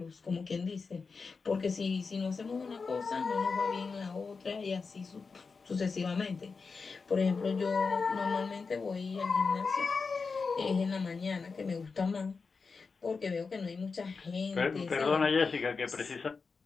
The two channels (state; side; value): quieter; right; 4.7 dB